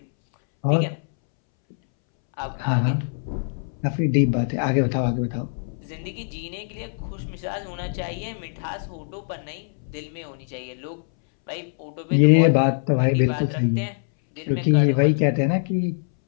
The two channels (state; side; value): silent; right; 63 dB below the other